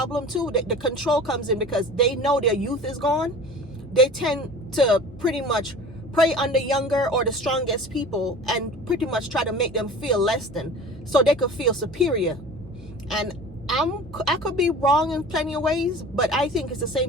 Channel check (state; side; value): normal; both; correlation 0.39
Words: too. The control comes in because they know their youth is gone. They tend to pretty much prey on the younger or the strongest people and pretty much try to make them feel less than, so they could feel superior. And I could be wrong in plenty of ways, but I think it's the